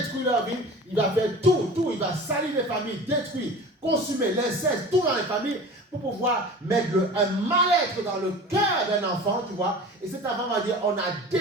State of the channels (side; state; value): both; normal; correlation 0.38